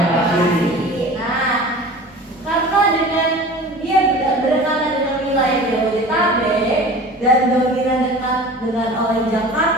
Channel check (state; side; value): normal; both; correlation 0.39